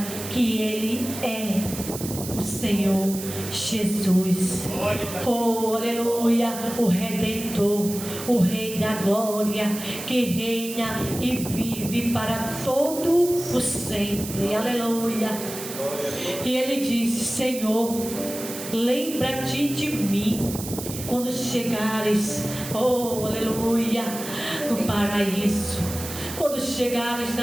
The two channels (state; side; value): noise; right; hiss, 9 dB below the sound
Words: que Ele é o Senhor Jesus. Oh, aleluia, o Redentor, o Rei da Glória, que reina e vive para todo o sempre. Aleluia. E Ele disse: Senhor, lembra-te de mim quando chegares, oh, aleluia, no paraíso. Quando chegares